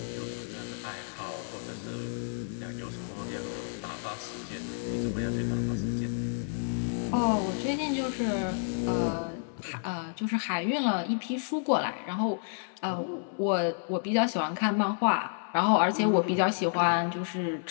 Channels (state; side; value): silent; right; 58 dB below the other